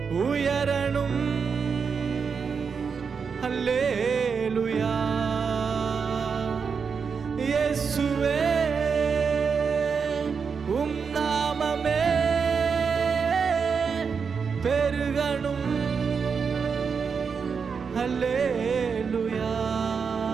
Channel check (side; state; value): left; quieter; 5.8 dB